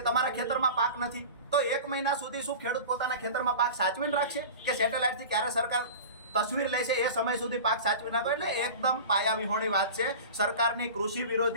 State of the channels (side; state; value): both; inverted; correlation -0.35